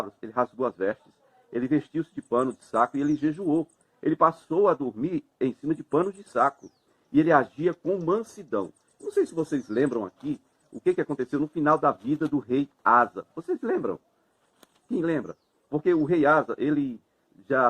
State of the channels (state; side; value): identical; both; correlation 1.00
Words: ele rasgou as vestes, ele vestiu-se de pano de saco e ele jejuou. Ele passou a dormir em cima de panos de saco. E ele agia com mansidão. Não sei se vocês lembram aqui o que aconteceu no final da vida do rei Asa. Vocês lembram? Quem lembra? Porque o rei Asa, ele já